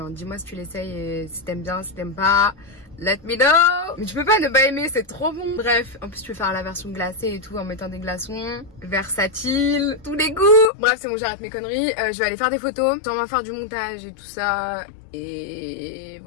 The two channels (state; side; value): drops out; right; at 10.7 s